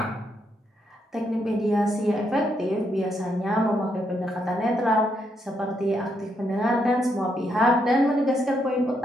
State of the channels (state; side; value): normal; both; correlation 0.78